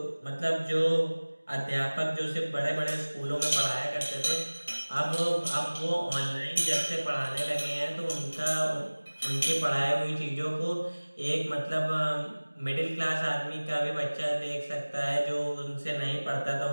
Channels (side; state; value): both; inverted; correlation -1.00